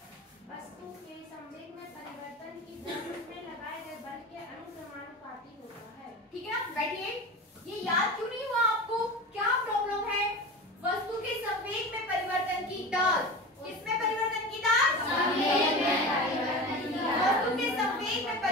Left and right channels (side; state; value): both; normal; correlation 0.31